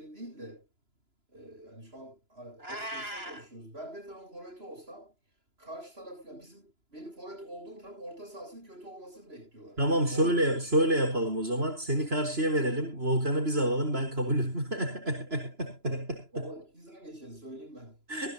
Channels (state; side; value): late; left; 2.9 ms